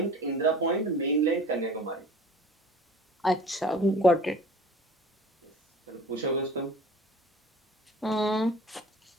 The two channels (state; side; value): normal; both; correlation 0.45